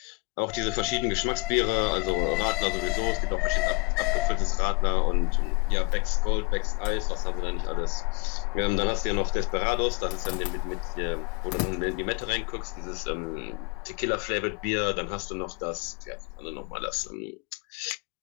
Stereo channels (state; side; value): quieter; right; 28.0 dB